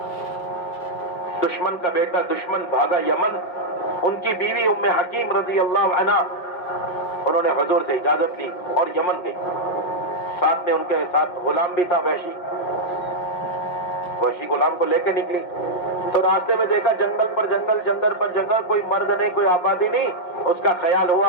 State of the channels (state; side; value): late; right; 5.6 ms